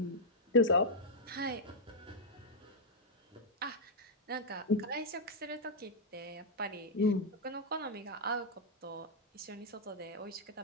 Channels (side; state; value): both; normal; correlation -0.03